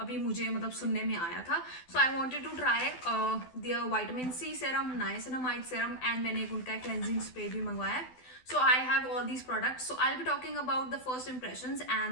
मुझे सुनने में आया था. So I wanted to try their vitamin C serum, niacinamide serum and मैंने एक उनका क्लेंजिंग स्प्रे भी मंगवाया है. So I have all these products. So I'll be talking about the first impressions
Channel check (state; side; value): late; right; 12 ms